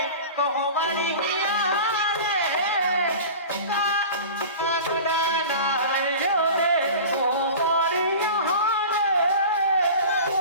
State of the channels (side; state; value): both; inverted; correlation -0.36